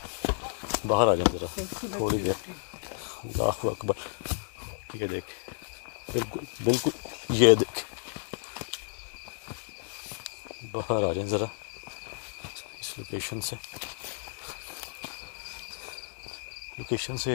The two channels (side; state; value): right; silent; digital silence